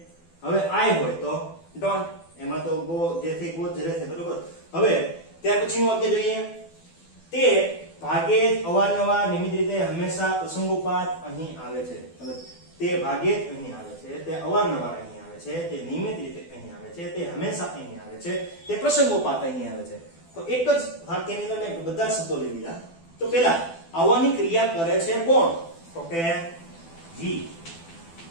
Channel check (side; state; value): right; late; 12 ms